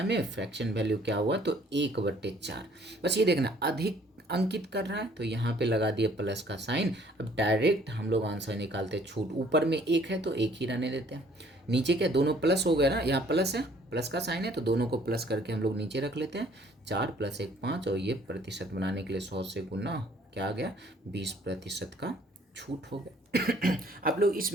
में, फ्रैक्शन वैल्यू क्या हुआ तो 1 बटे 4। बस ये देखना अधिक अंकित कर रहा है तो यहाँ पे लगा दिया प्लस का साइन। अब डायरेक्ट हम लोग आंसर निकालते हैं, छूट ऊपर में 1 है तो 1 ही रहने देते हैं, नीचे क्या दोनों प्लस हो गया ना, यहाँ प्लस है, प्लस का साइन है तो दोनों को प्लस करके हम लोग नीचे रख लेते हैं, 4 + 1 5, और ये प्रतिशत बनाने के लिए 100 से गुना क्या आ गया 20% का छूट हो गया। आप लोग इस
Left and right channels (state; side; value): normal; both; correlation 0.59